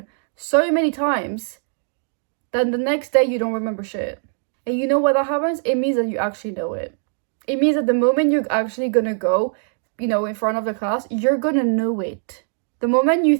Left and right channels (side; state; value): left; silent; 61 dB below the other